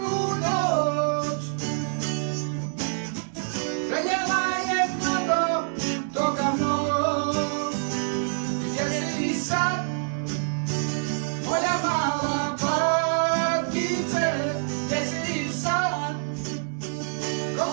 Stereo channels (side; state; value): left; silent; 61 dB below the other